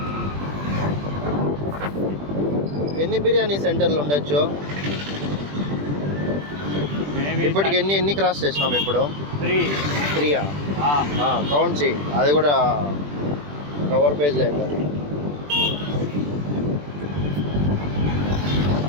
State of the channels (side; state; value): left; late; 20 ms